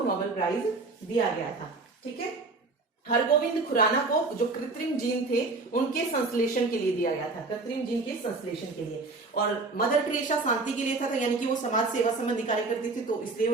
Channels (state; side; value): quieter; left; 3.6 dB